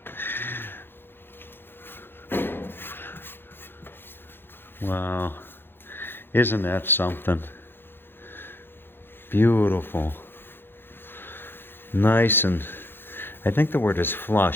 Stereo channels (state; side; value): late; right; 0.10 ms